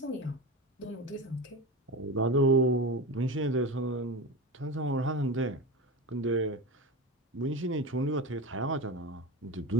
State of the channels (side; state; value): both; normal; correlation 0.24